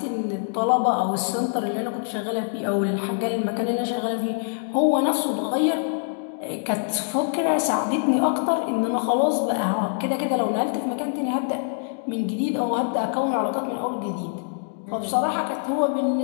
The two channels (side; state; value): right; silent; digital silence